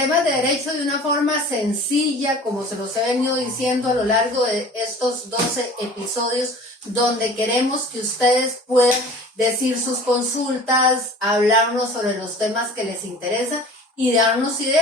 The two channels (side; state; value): both; normal; correlation 0.43